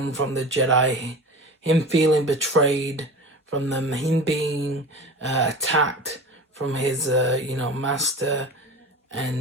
from the Jedi, him feeling betrayed from them, him being attacked from his, master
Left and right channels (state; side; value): normal; both; correlation 0.33